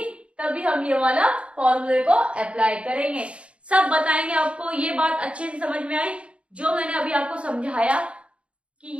तभी हम ये वाला फॉर्मूले को अप्लाई करेंगे। सब बताएंगे आपको। ये बात अच्छे से समझ में आई जो मैंने अभी आपको समझाया कि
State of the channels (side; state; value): left; late; 0.060 ms